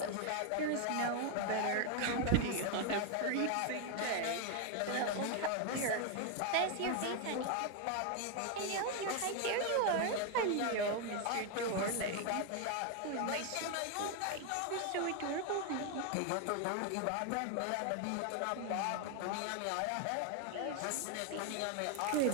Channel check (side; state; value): both; different; correlation 0.01